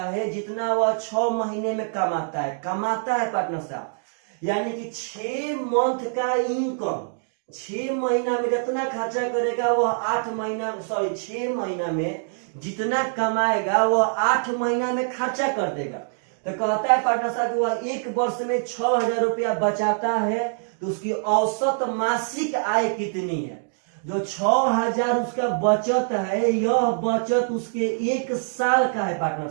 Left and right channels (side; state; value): left; silent; digital silence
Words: जितना वह 6 महीने में कमाता है पार्टनर साहब, यानी कि 6 मंथ का इनकम 6 महीना में जितना खर्चा करेगा वह 6 महीना में जितना कमाएगा वह 8 महीना में खर्चा कर देगा। तो कहता है पार्टनर साहब कि वह 1 वर्ष में 6000 रुपया बचाता है, तो उसकी औसत मासिक आय कितनी है? जो 6000 उसका बचत है, यह बचत उसके 1 साल का है पार्टनर